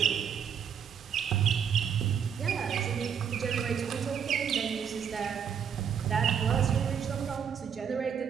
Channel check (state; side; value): quieter; left; 7.7 dB